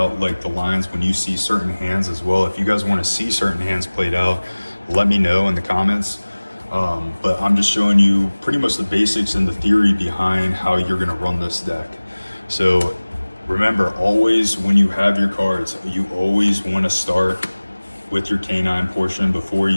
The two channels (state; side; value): inverted; both; correlation -1.00